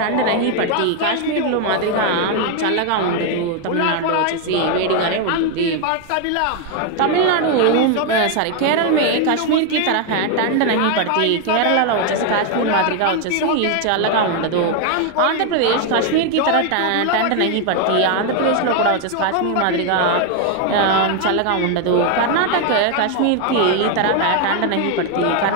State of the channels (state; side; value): different; both; correlation 0.01